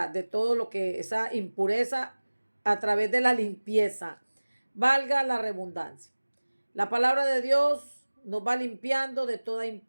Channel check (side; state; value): both; inverted; correlation -1.00